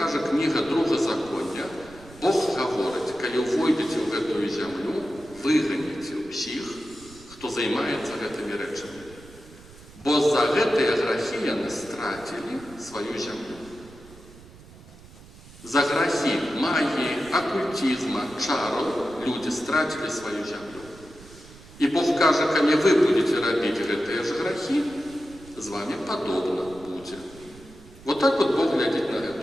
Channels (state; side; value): noise; right; rumble, 21 dB below the sound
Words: книга Другозаконня, Бог говорит, коли войдете в эту землю, выгоните всех, кто займается этими речами. Бо за гэтые грехи они стратили свою землю. За грехи магии, оккультизма, чаров люди стратили свою землю. И Бог каже, коли вы будете робить гэтые же грехи, с вами подобно будет. Вот так вот Бог глядит на